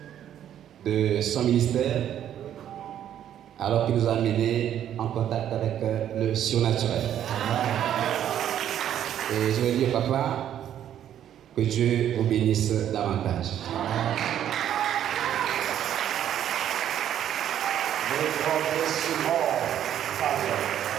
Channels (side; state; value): left; quieter; 10.5 dB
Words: de son ministère alors qu'il nous a amenés en contact avec le surnaturel. Et je vais dire, papa, que Dieu vous bénisse davantage.